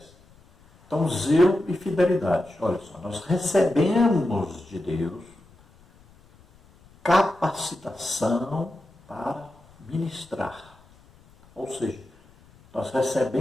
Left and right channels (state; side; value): noise; left; rumble, 28 dB below the sound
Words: Então, zelo e fidelidade. Olha só, nós recebemos de Deus capacitação para ministrar. Ou seja, nós